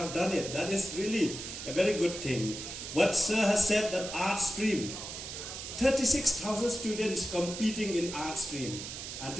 that is really a very good thing. What Sir has said, that art stream, 36,000 students competing in art stream, and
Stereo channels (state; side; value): noise; right; hiss, 8 dB below the sound